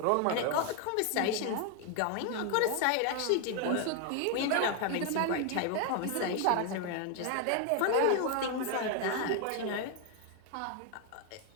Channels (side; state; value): both; different; correlation 0.00